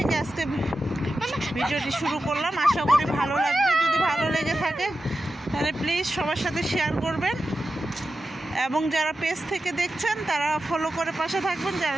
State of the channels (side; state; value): both; normal; correlation 0.91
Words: আজকে ভিডিওটি শুরু করলাম, আশা করি ভালো লাগবে। যদি ভালো লেগে থাকে তাহলে প্লিজ সবার সাথে শেয়ার করবেন, এবং যারা পেজ থেকে দেখছেন তারা ফলো করে পাশে থাকবেন, যারা